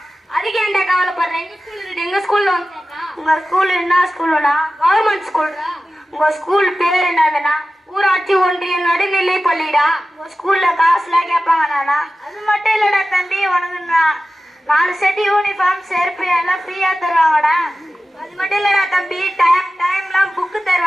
அதுக்கு ஏன்டா கவலைப்படுறேன்? எங்க ஸ்கூல்ல வந்து உங்க ஸ்கூல் என்ன ஸ்கூலுண்ணா? கவர்மெண்ட் ஸ்கூல்டா. உங்க ஸ்கூல் பேர் என்னதுண்ணா? ஊராட்சி ஒன்றிய நடுநிலை பள்ளிடா. உங்க ஸ்கூல்ல காசுலாம் கேட்பாங்கண்ணா. அது மட்டும் இல்லடா தம்பி, உனக்கு 4 செட் யூனிஃபார்ம் செருப்பு எல்லாம் ஃப்ரீயா தருவாங்கடா. அது மட்டும் இல்லடா தம்பி, டைம்லாம் புக்கு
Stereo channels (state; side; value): normal; both; correlation 0.95